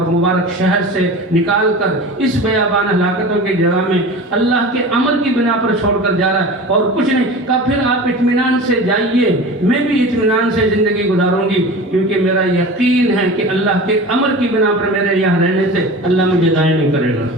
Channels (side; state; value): both; normal; correlation 0.35